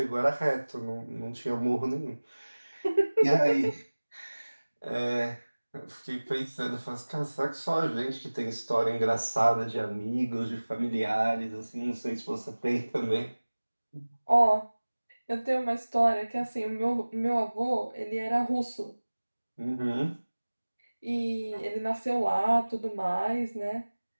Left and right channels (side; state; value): both; inverted; correlation -1.00